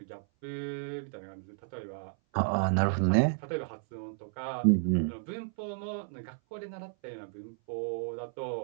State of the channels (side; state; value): left; silent; 56 dB below the other